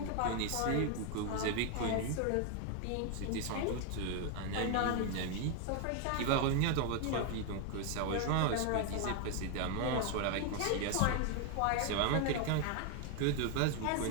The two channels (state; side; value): different; both; correlation 0.01